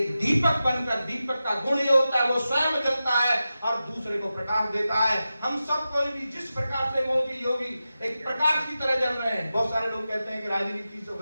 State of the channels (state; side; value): inverted; both; correlation -0.93